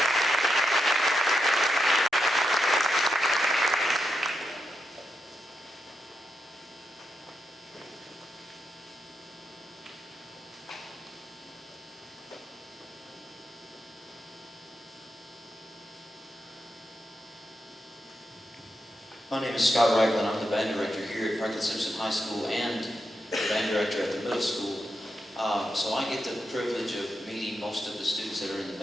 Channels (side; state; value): both; normal; correlation 0.84